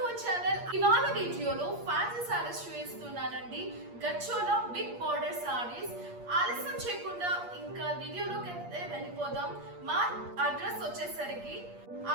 our channel. ఇవాళ వీడియోలో ఫ్యాన్సీ సారీస్ చూపిస్తున్నానండి. గచ్చోలా బిగ్ బార్డర్ సారీస్. ఆలస్యం చేయకుండా ఇంకా వీడియోలోకి అయితే వెళ్ళిపోదాం. మా అడ్రస్ వచ్చేసరికి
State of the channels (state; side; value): late; left; 8.5 ms